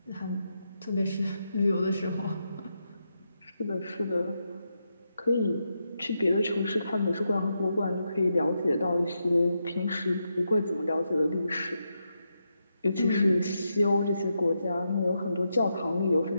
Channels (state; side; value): inverted; both; correlation -0.84